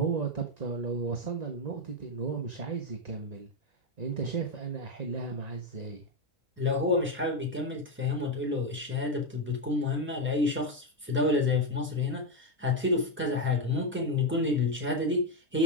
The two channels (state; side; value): normal; both; correlation 0.06